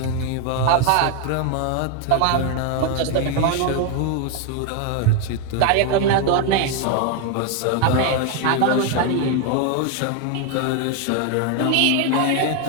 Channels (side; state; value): both; different; correlation 0.01